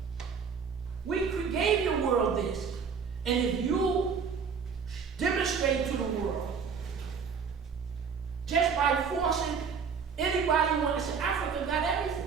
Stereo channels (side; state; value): left; quieter; 6.1 dB